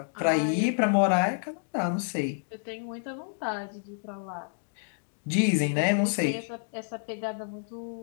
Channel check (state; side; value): silent; right; digital silence